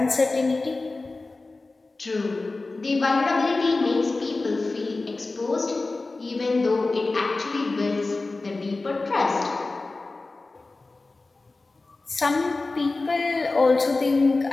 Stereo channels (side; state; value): right; quieter; 3.4 dB